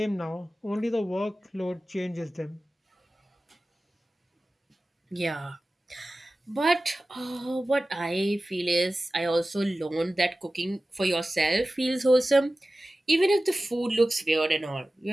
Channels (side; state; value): both; normal; correlation 0.96